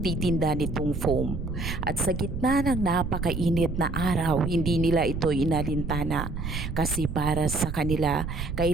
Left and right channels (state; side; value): noise; right; rumble, 5 dB below the sound